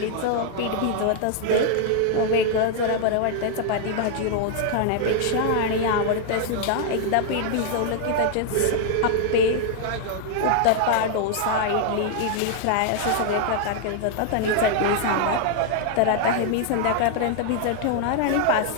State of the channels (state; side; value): different; both; correlation 0.00